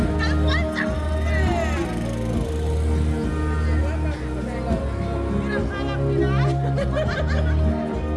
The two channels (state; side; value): identical; both; correlation 1.00